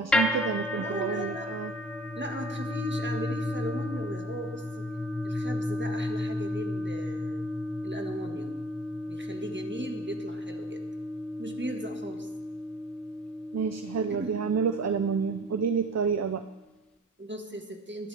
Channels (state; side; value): normal; both; correlation 0.48